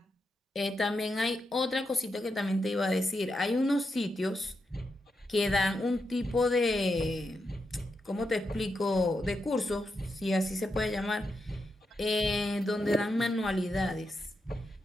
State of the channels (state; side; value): normal; both; correlation 0.85